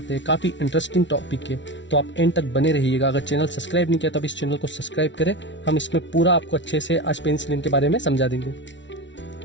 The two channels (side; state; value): right; late; 0.54 ms